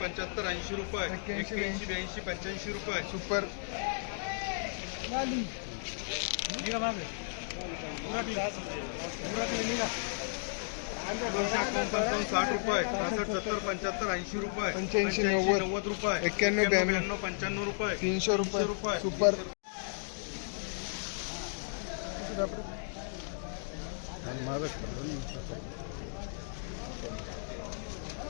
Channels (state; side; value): silent; right; digital silence